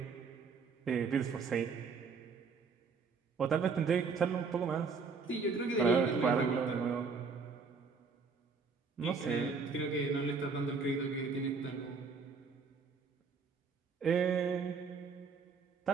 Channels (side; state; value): left; quieter; 5.0 dB